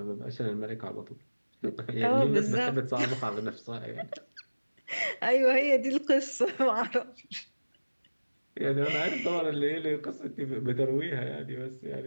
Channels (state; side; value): inverted; both; correlation -1.00